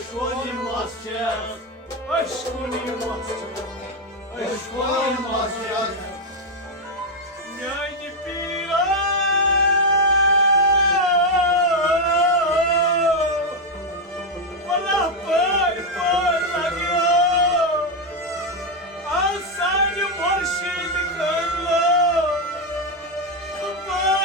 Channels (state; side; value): normal; both; correlation 0.04